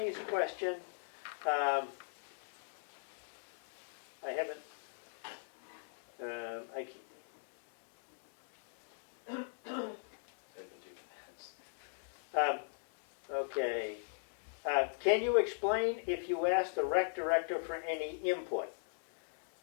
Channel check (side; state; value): right; silent; digital silence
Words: question, I haven't, I can't. Taking 2 minutes. Okay. Can you explain if you asked the rec director for any input?